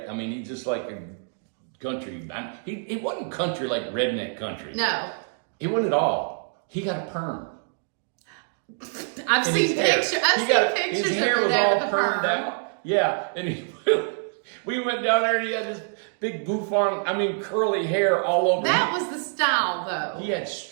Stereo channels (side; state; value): left; silent; 61 dB below the other